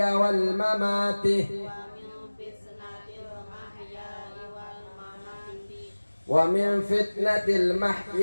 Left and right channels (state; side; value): inverted; both; correlation -1.00